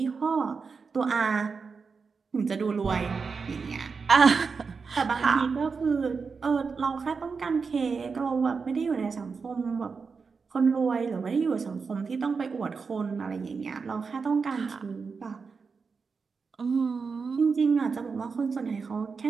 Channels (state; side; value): quieter; left; 5.1 dB